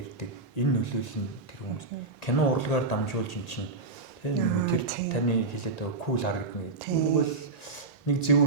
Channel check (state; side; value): quieter; left; 3.6 dB